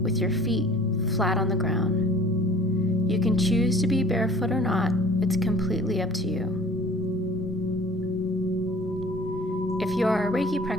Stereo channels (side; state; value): both; normal; correlation 0.49